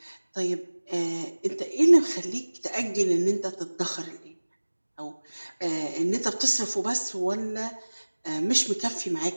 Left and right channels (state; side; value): inverted; both; correlation -1.00